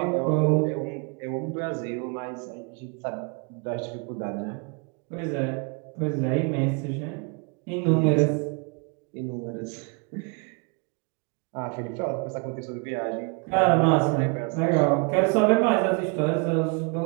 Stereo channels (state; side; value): quieter; left; 33.7 dB